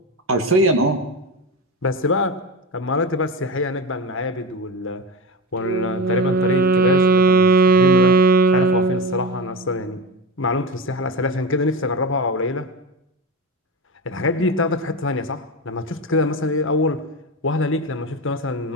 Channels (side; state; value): both; normal; correlation 0.23